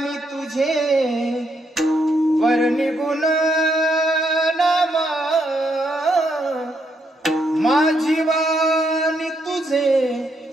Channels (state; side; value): normal; both; correlation 0.76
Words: तुझे वर निगुण नामा माझी वाणी तुझे